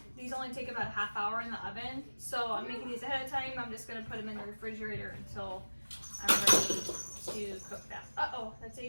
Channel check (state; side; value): inverted; both; correlation -1.00